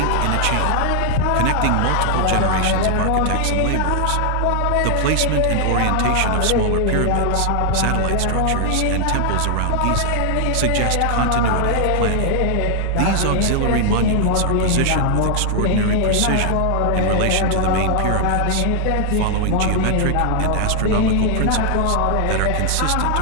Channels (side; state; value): both; different; correlation 0.00